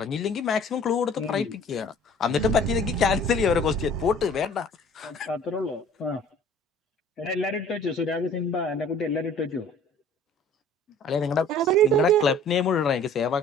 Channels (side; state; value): both; normal; correlation 0.50